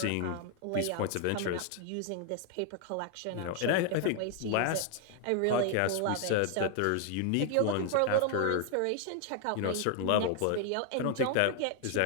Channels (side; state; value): both; different; correlation 0.00